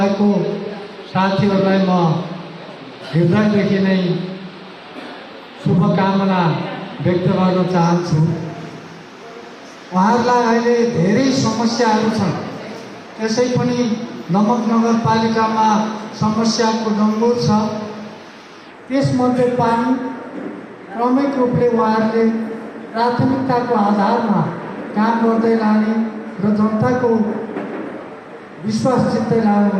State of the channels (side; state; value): both; identical; correlation 1.00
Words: साथीहरूलाई म हृदयदेखि नै शुभकामना व्यक्त गर्न चाहन्छु। उहाँहरूलाई अहिले धेरै समस्याहरू छन्, त्यसै पनि नमक नगरपालिकामा समस्याको डङ्गुर छ। त्यसमध्ये पानी क्रमिक रूपले उहाँहरूले प्राथमिकताको आधारमा काम गर्दै लाने र जनताको विश्वास जित्दै